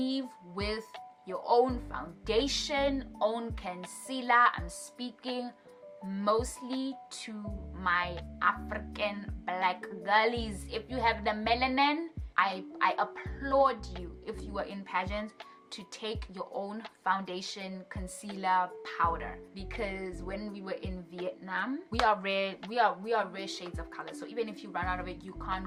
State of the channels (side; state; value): both; identical; correlation 1.00